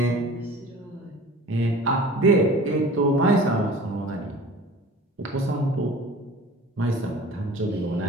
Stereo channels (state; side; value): normal; both; correlation 0.42